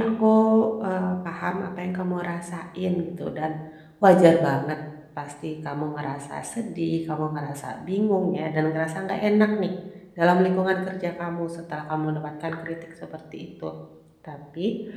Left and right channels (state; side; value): identical; both; correlation 1.00